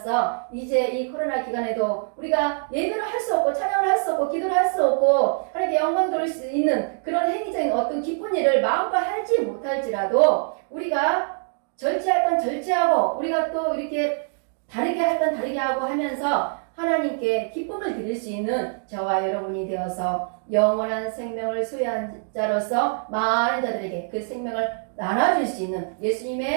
이제 이 코로나 기간에도 우리가 예배를 할 수 없고 찬양을 할 수 없고 기도를 할 수 없고 하나님께 영광 돌릴 수 있는 그런 행위적인 어떤 기쁜 일을 마음껏 하지 못할지라도 우리가 절제할 건 절제하고 우리가 또 이렇게 다르게 할 건 다르게 하고 하면서 하나님께 기쁨을 드릴 수 있는 저와 여러분이 되어서 영원한 생명을 소유한 자로서 많은 자들에게 그 생명을 나눠줄 수 있는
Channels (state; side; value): silent; left; 62 dB below the other